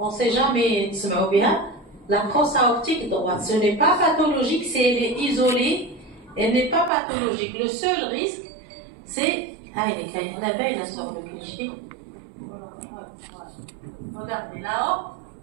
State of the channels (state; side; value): drops out; left; at 6.9 s